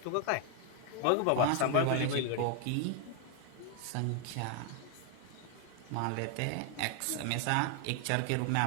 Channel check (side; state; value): both; different; correlation 0.00